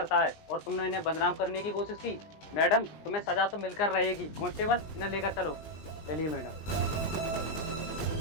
है और तुमने इन्हें बदनाम करने की कोशिश की। मैडम, तुम्हें सजा तो मिलकर रहेगी। कांस्टेबल, इन्हें लेकर चलो। चलिए मैडम।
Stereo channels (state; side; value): late; right; 20 ms